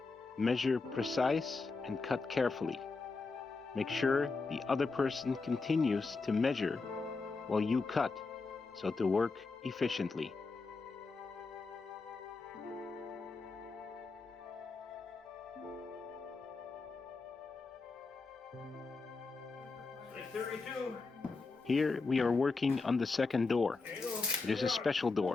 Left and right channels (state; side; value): quieter; right; 4.1 dB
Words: Measure precise and cut carefully. Make sure the other person continues to measure while you cut, so to work efficiently. Here we are working on the second door. It is a special